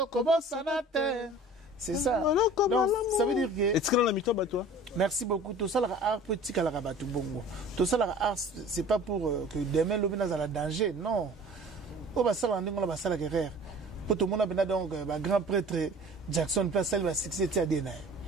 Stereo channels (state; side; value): normal; both; correlation 0.45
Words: kobosana te. C'est ça. Donc, ça veut dire que... Est-ce que dans la mi-temps, toi? Merci beaucoup. Tout ça, l'art petit à la rabatou bongo. Tout ça, l'art, c'est pas pour que demain, l'homme n'a pas danger. Non. Au bas, ça, on va ça la guerre. Pour tout le monde, donc, grand prêtre Jackson, place, elle va succéder à Dena.